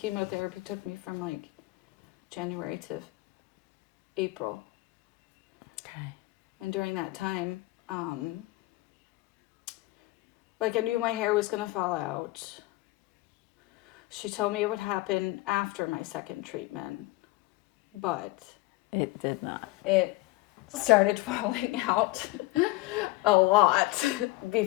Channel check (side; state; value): right; quieter; 20.1 dB